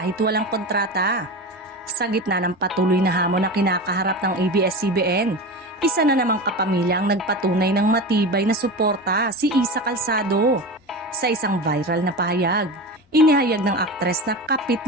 walang kontrata. Sa gitna ng patuloy na hamon na kinakaharap ng ABS-CBN, isa na namang kapamilya ang nagpatunay ng matibay na suporta, si Isa Calzado. Sa isang viral na pahayag, inihayag ng aktres na kapit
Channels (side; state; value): both; normal; correlation 0.26